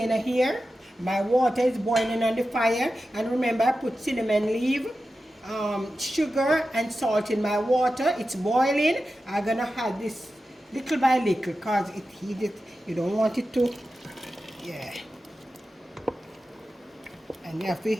here. My water is boiling on the fire, and remember I put cinnamon leaf, sugar and salt in my water. It's boiling. I'm gonna add this little by little because it heated. You don't want it to, yeah. And you have to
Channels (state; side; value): normal; both; correlation 0.92